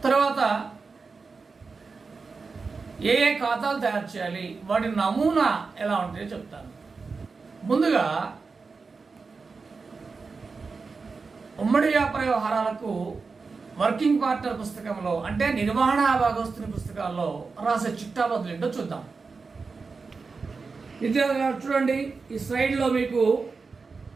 తర్వాత ఏ ఏ ఖాతాలు తయారు చేయాలి, వాటి నమూనా ఎలా ఉంటాయో చెప్తాను. ముందుగా ఉమ్మడి వ్యాపార వ్యవహారాలకు వర్కింగ్ పార్ట్నర్ పుస్తకంలో అంటే నిర్వహణ భాగస్తుని పుస్తకాల్లో రాసే చిట్టాబదులు ఏంటో చూద్దాం. విద్యార్థులు చూడండి, ఈ స్లైడ్లో మీకు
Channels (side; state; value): left; quieter; 4.5 dB